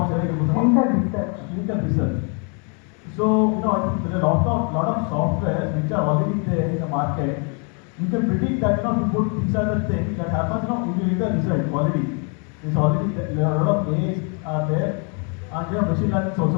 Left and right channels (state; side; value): quieter; right; 37.6 dB